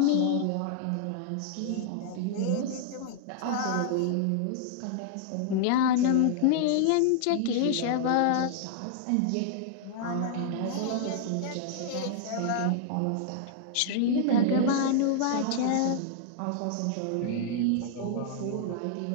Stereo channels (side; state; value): both; different; correlation -0.01